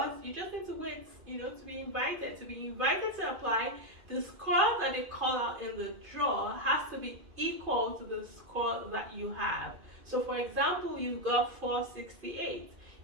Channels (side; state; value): left; late; 2.5 ms